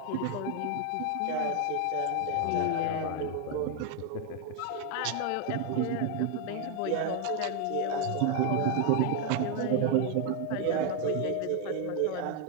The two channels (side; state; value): both; different; correlation 0.01